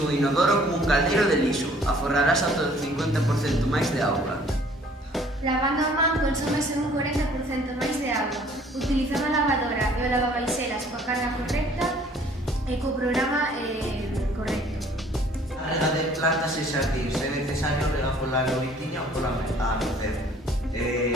inodoro como un caldeiro de lixo. Aforrarás ata o 50% máis de auga. Lavando a man consómese un 40% máis de auga. Utilizando a lavadora e o lavabaixelas coa carga correcta e co programa correcto. A rega de plantas e xardíns é necesario regar pola noitiña ou pola anocer.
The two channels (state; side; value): normal; both; correlation 0.56